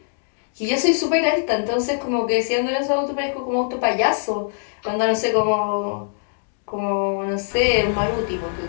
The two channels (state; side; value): silent; right; digital silence